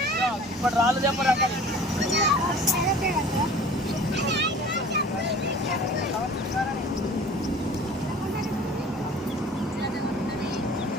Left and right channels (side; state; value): both; normal; correlation 0.45